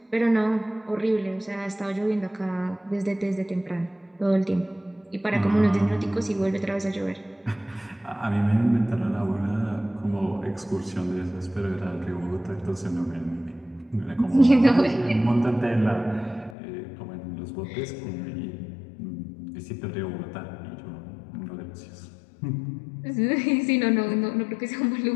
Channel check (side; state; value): right; drops out; at 16.6 s